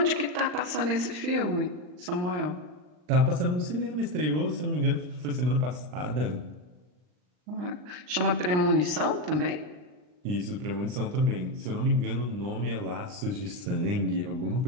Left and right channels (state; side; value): late; left; 39 ms